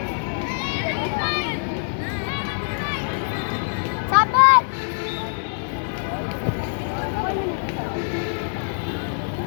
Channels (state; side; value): silent; right; digital silence